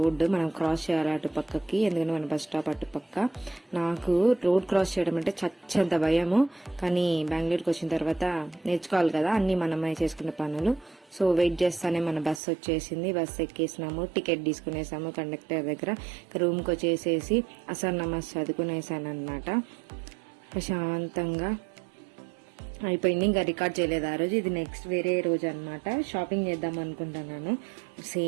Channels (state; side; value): drops out; left; at 12.4 s